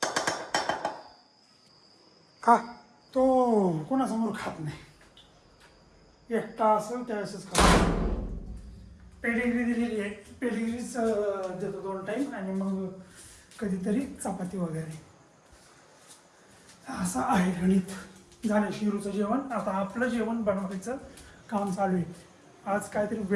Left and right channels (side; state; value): both; identical; correlation 1.00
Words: खा. तो कोणासमोर खात नाही, एकटा असेल त्यावेळेसच खातो. पेडिग्री दिलेली आहे, पेडिग्रीच देतो 2 टाईम आणि मग कधीतरी चपाती वगैरे. असं आहे गणित. झालं शिरूचं जेवण. आता आपलं जेवण बनवायचं काम चालू आहे. आज काहीतरी